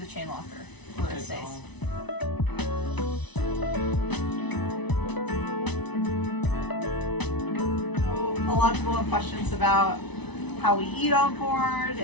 chain locker where it stays. So, a lot of people have questions about how we eat on board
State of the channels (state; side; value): late; right; 1.0 ms